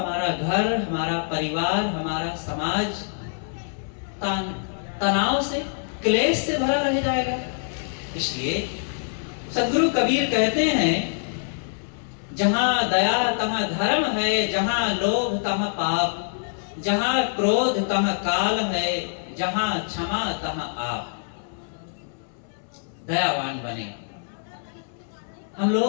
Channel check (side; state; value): right; silent; 62 dB below the other